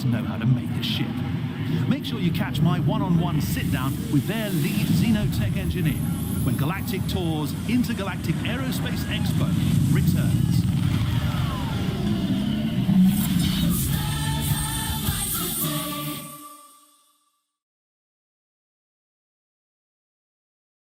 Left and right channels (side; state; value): both; identical; correlation 1.00